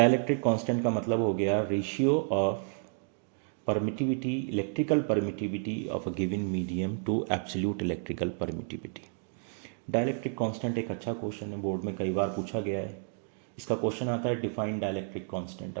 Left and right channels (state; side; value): silent; left; 57 dB below the other